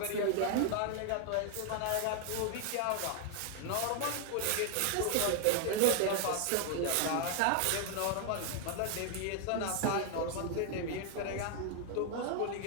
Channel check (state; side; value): different; both; correlation 0.00